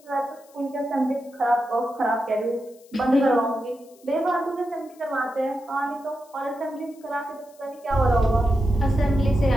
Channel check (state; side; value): noise; left; hiss, 28 dB below the sound